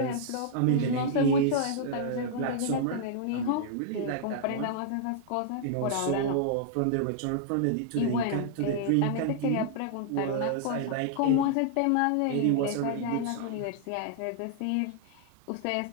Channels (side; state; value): both; different; correlation -0.01